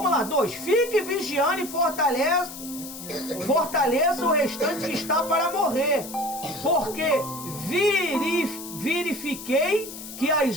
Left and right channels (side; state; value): left; noise; hiss, 12 dB below the sound